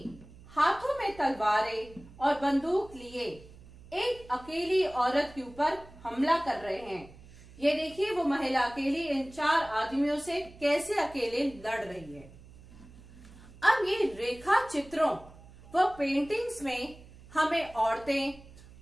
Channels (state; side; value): noise; right; hum, 21 dB below the sound